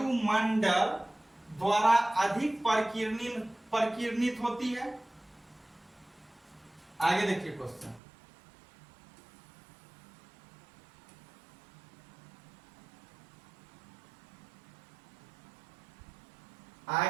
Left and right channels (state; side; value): drops out; left; at 8.0 s